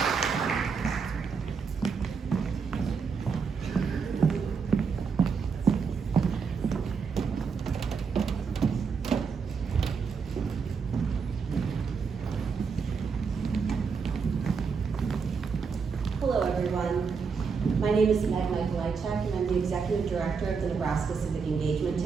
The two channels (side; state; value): left; quieter; 5.6 dB